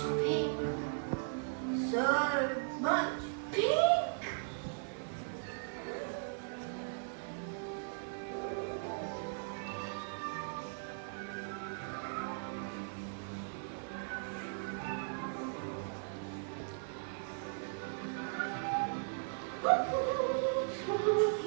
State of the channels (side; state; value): left; silent; 53 dB below the other